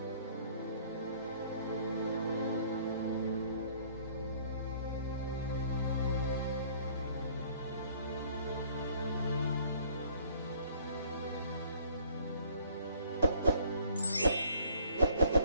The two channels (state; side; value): inverted; both; correlation -0.57